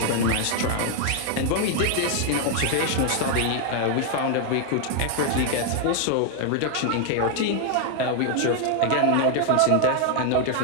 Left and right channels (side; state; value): both; different; correlation 0.00